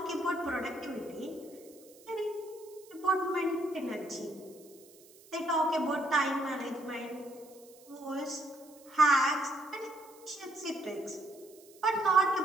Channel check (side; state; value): right; noise; hiss, 24 dB below the sound